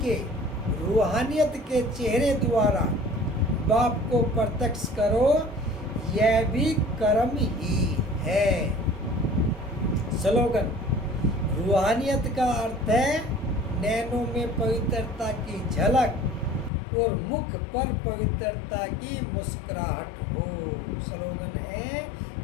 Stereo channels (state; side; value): drops out; right; at 16.7 s